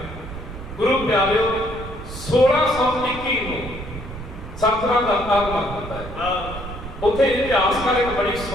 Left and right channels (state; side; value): noise; right; rumble, 10 dB below the sound